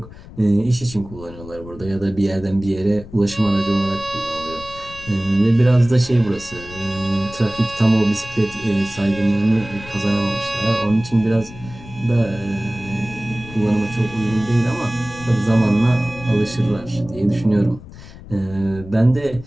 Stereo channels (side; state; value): left; noise; rumble, 16 dB below the sound